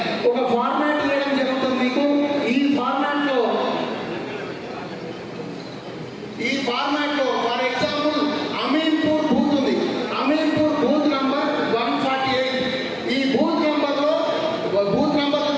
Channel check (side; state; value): both; identical; correlation 1.00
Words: ఒక ఫార్మాట్ ఇవ్వడం జరుగుతుంది మీకు. ఈ ఫార్మాట్లో ఫర్ ఎగ్జాంపుల్ అమీన్పూర్ బూత్ ఉంది. Ameenpur booth number 148. ఈ బూత్ నంబర్లో